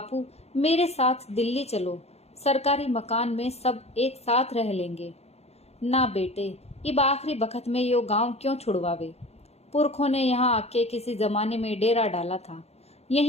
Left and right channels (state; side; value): late; right; 0.31 ms